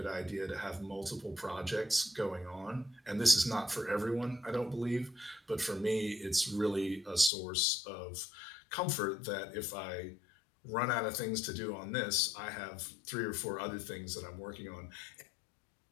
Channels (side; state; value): right; drops out; at 7.3 s